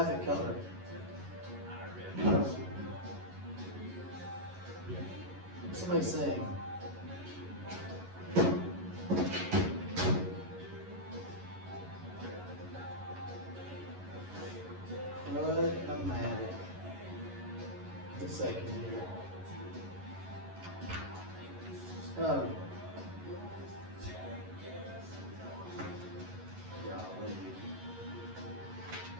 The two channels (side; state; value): left; late; 11 ms